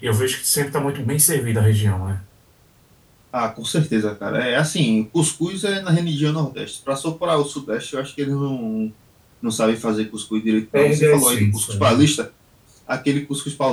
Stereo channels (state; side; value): identical; both; correlation 1.00